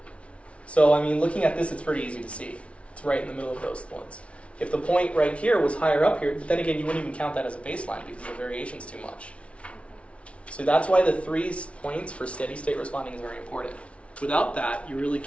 So, I mean, looking at this, it's pretty easy to see. It's right in the middle of those points. If the point right here was higher up here, then again, you wouldn't even count that as a baseline because the variation's too much. So that's why the 3 points for steady state responding is very important. Without that, you really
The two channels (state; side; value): late; right; 0.062 ms